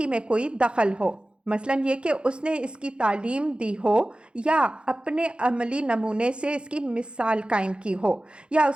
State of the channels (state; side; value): late; left; 0.055 ms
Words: میں کوئی دخل ہو، مثلاً یہ کہ اس نے اس کی تعلیم دی ہو یا اپنے عملی نمونے سے اس کی مثال قائم کی ہو یا